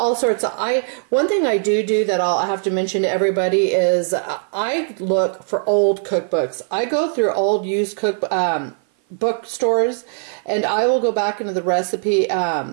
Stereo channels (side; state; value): left; silent; 56 dB below the other